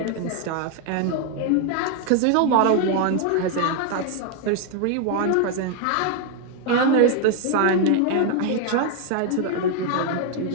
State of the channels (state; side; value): different; both; correlation 0.00